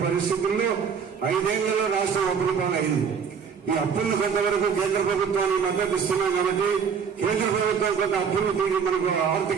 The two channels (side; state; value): left; quieter; 6.7 dB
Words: పరిస్థితుల్లో 5 ఏళ్లలో రాష్ట్రం అప్పుల పాలైంది. ఈ అప్పులను కొంతవరకు కేంద్ర ప్రభుత్వాన్ని మద్దతు ఇస్తున్నాం కాబట్టి కేంద్ర ప్రభుత్వం కొంత అప్పులు తీరి మనకు